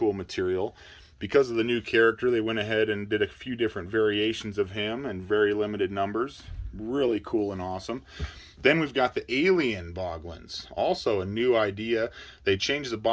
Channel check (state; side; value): identical; both; correlation 1.00